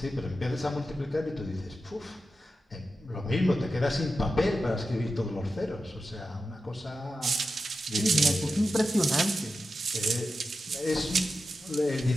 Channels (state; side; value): normal; both; correlation 0.91